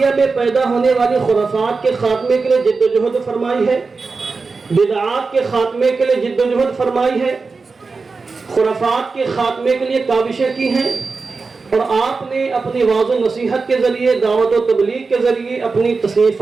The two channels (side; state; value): left; quieter; 4.3 dB